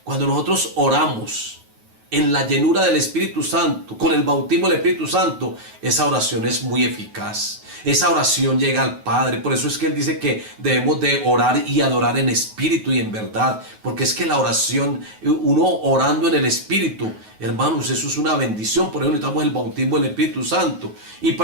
Cuando nosotros oramos en la llenura del Espíritu Santo, con el bautismo del Espíritu Santo, esa oración es muy eficaz. Esa oración llega al Padre. Por eso es que Él dice que debemos de orar y adorar en espíritu y en verdad. Porque es que la oración, uno orando en el Espíritu, hermanos, eso es una bendición. Por eso necesitamos el bautismo del Espíritu Santo. Y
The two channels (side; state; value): left; late; 9.3 ms